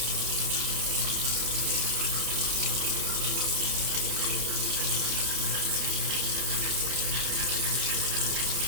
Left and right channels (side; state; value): left; late; 30 ms